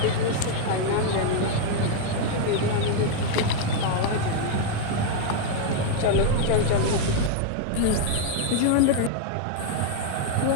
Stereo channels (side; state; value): both; different; correlation 0.00